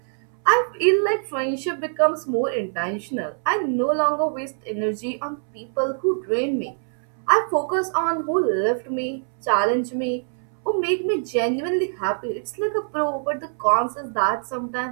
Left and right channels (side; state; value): left; silent; 61 dB below the other